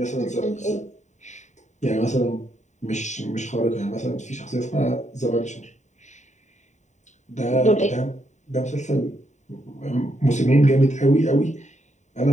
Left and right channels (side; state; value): right; late; 0.34 ms